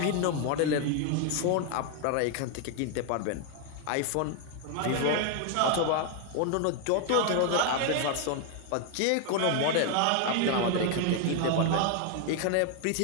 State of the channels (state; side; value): different; both; correlation 0.00